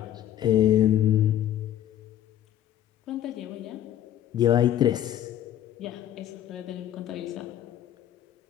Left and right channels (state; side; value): quieter; right; 11.5 dB